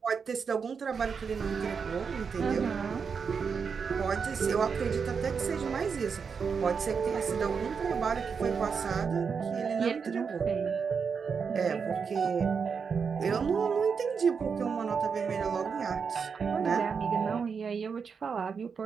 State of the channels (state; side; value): quieter; left; 5.9 dB